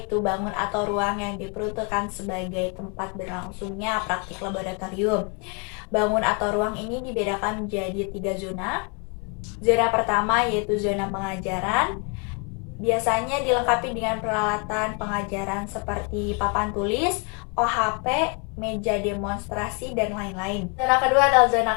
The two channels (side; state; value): right; quieter; 34.0 dB